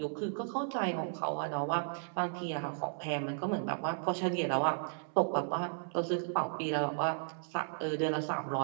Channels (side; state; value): left; silent; digital silence